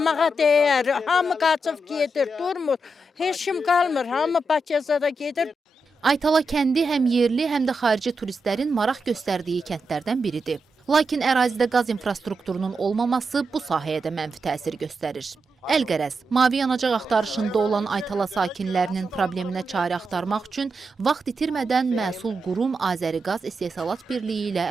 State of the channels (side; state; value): both; normal; correlation 0.86